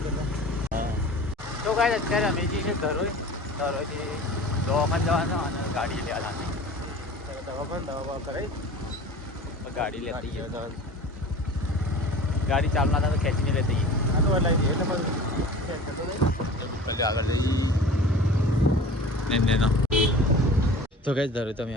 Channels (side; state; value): both; normal; correlation 0.40